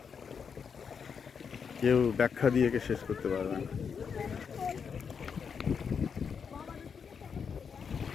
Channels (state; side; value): quieter; right; 6.4 dB